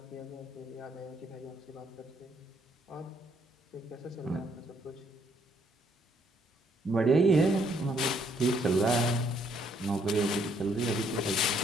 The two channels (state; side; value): normal; both; correlation 0.69